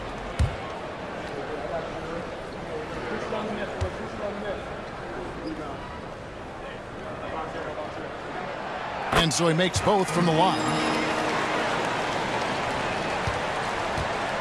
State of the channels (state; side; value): identical; both; correlation 1.00